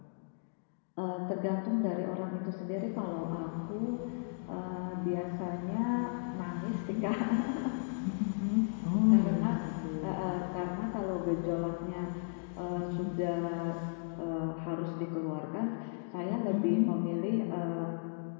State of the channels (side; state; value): right; silent; digital silence